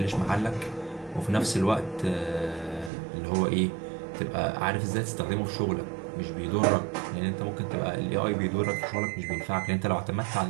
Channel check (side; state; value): left; drops out; at 2.9 s